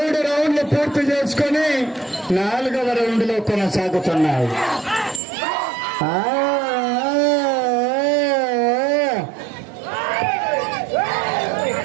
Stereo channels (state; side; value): drops out; left; at 5.2 s